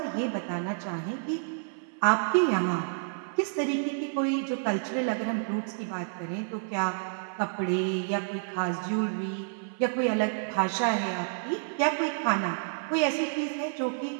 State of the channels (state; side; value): silent; left; 58 dB below the other